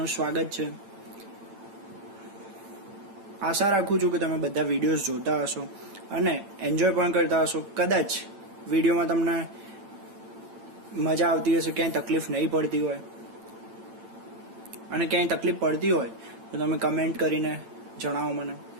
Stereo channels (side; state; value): left; late; 8.9 ms